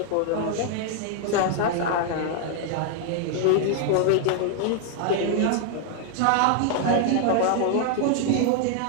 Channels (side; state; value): both; different; correlation 0.00